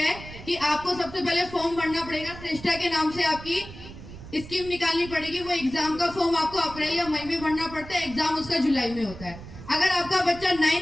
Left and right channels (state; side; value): noise; right; rumble, 14 dB below the sound